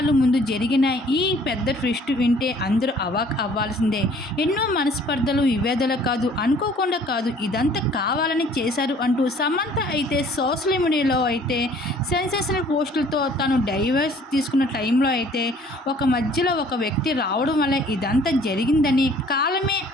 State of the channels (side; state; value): both; normal; correlation 0.55